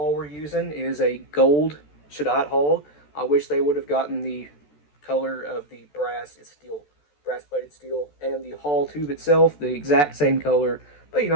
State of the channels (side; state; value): right; late; 14 ms